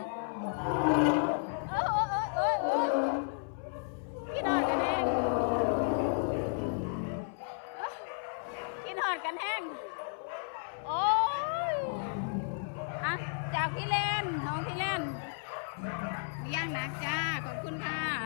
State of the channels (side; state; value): right; silent; 56 dB below the other